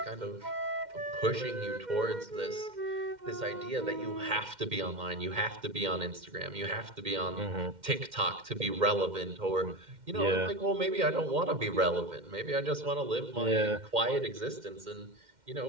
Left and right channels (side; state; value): left; late; 2.1 ms